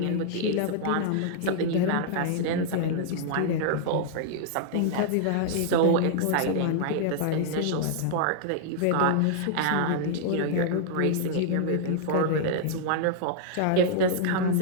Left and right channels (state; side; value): different; both; correlation -0.01